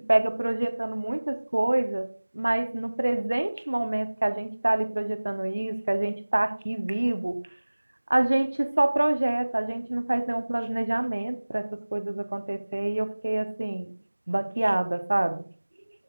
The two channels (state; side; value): inverted; both; correlation -1.00